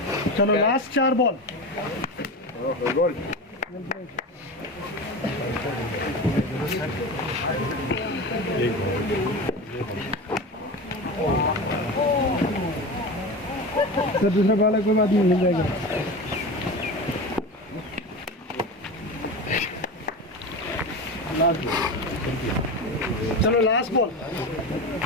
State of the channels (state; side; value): normal; both; correlation 0.26